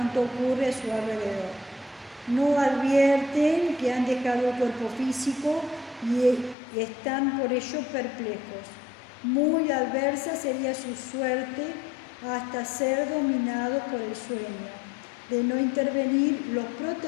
ocurre a su alrededor. No advierten que han dejado el cuerpo físico y están por ello perplejos. Muy adversa sería su suerte hasta ser dominados por el sueño, de no intervenir los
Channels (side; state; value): right; drops out; at 6.6 s